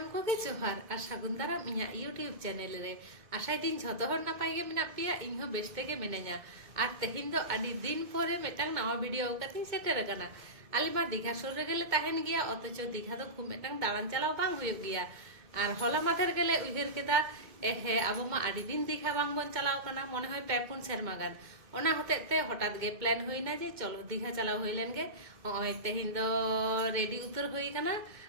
ᱠᱚᱜᱮ ᱡᱚᱦᱟᱨ ᱟᱨ ᱥᱟᱹᱜᱩᱱ ᱫᱟᱨᱟᱢ ᱤᱧᱟᱹᱜ ᱤᱭᱩᱴᱤᱭᱩᱵ ᱪᱮᱱᱮᱞ ᱨᱮ ᱟᱥᱟᱭ ᱫᱤᱧ ᱡᱷᱚᱛᱚ ᱦᱚᱲ ᱱᱟᱯᱟᱭ ᱜᱮ ᱢᱮᱱᱟᱜ ᱯᱮᱭᱟ ᱤᱧ ᱦᱚᱸ ᱵᱮᱥ ᱛᱮᱜᱮ ᱢᱤᱱᱟᱹᱧᱟ ᱟᱨ ᱛᱮᱦᱮᱧ ᱫᱚ ᱟᱹᱰᱤ ᱫᱤन ᱯᱚᱨᱮ ᱢᱤᱫᱴᱟᱝ ᱱᱟᱣᱟ ᱵᱷᱤᱰᱤᱭᱳ ᱠᱟᱛᱮᱧ ᱥᱮᱴᱮᱨ ᱟᱠᱟᱱᱟ। ᱟᱞᱮ ᱢᱟ ᱫᱤᱜᱷᱟ ᱥᱩᱨ ᱨᱮᱜᱮᱞᱮ ᱛᱟᱦᱮᱱ ᱜᱮᱭᱟ অথচ ᱫᱤঘᱟ ᱫᱚ খুব ᱢᱤᱫᱴᱟᱝ ᱫᱟᱬᱟᱱ ᱪᱟᱞᱟᱣ ᱵᱟᱝ ᱦᱩᱭᱩᱜ ᱜᱮᱭᱟ। আর হলা মাথের গেলে উইহার কেদা হ্যাঁ আবো মা আড়ি দিন দীঘা বাং বন চালাও কানা মনে হয় পে পুন সেরমা গান ওনা হতেতে হঠাৎ গে প্ল্যান হইনা যে চলো দীঘা চালাও হইলেন গে ওই তেহিন দো রেডি উতর হই কানা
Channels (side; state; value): left; late; 2.2 ms